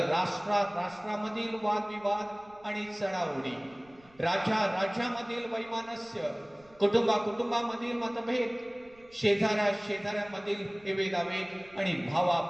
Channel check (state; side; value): noise; right; rumble, 28 dB below the sound